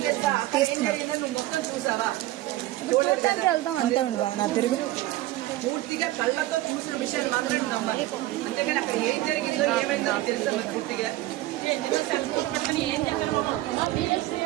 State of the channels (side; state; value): left; quieter; 16.6 dB